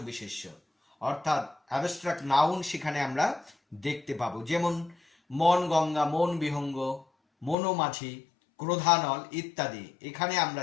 বিশেষ্য, অর্থাৎ অ্যাবস্ট্রাক্ট নাউন সেখানে আমরা দেখতে পাবো। যেমন মন গঙ্গা, মন বিহঙ্গ, মনোমাঝি, ক্রোধানল ইত্যাদি। এখানে আমরা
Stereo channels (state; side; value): drops out; right; at 7.6 s